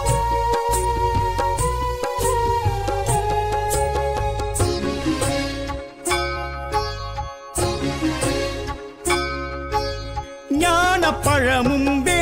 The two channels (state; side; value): identical; both; correlation 1.00